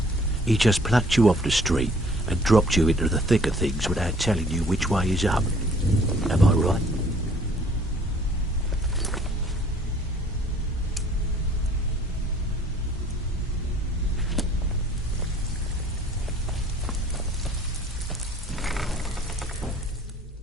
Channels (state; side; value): normal; both; correlation 0.56